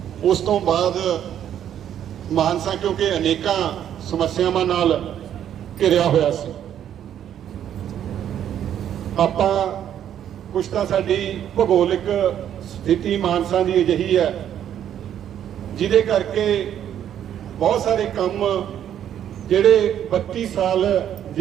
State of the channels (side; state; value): left; quieter; 10.1 dB